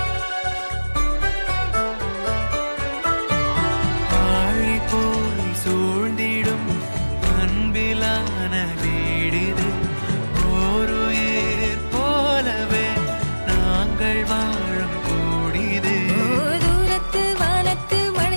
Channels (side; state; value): both; inverted; correlation -1.00